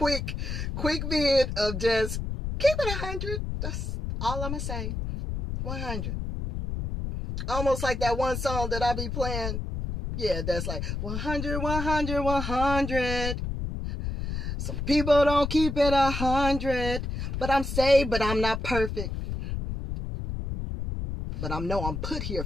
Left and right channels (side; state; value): left; noise; rumble, 4 dB below the sound